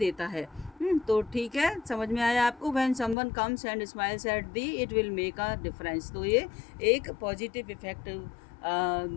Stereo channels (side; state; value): right; drops out; at 3.2 s